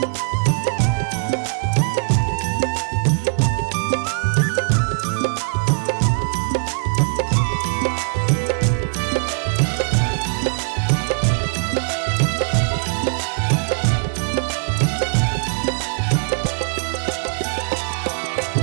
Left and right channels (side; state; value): left; silent; digital silence